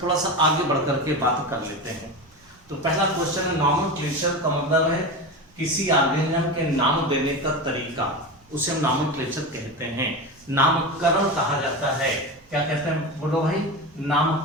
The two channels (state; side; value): noise; right; rumble, 30 dB below the sound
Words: थोड़ा सा आगे बढ़ करके बात कर लेते हैं। तो पहला क्वेश्चन है नॉमेनक्लेचर का मतलब है किसी ऑर्गेनिज्म के नाम देने का तरीका, उसे हम नॉमेनक्लेचर कहते हैं। नामकरण कहा जाता है, क्या कहते हैं बोलो भाई,